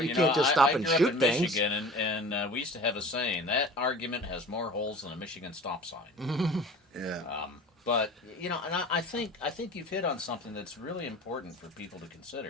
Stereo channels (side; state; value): both; normal; correlation 0.40